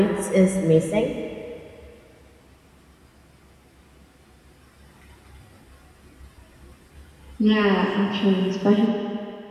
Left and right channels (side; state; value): both; identical; correlation 1.00